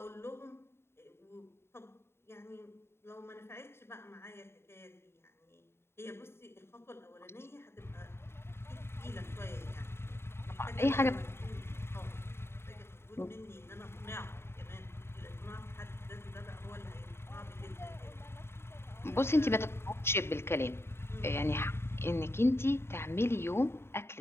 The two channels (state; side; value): late; right; 0.12 ms